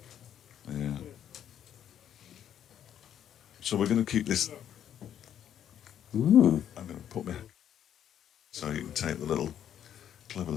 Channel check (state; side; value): quieter; right; 10.0 dB